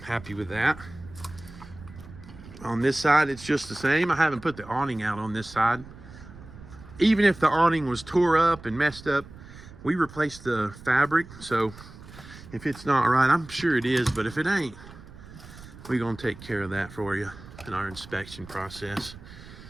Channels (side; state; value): right; noise; rumble, 18 dB below the sound